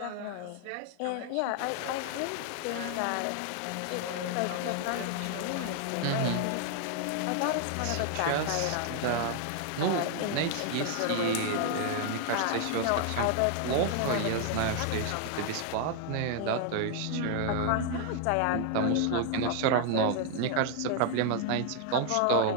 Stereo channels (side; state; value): both; different; correlation 0.00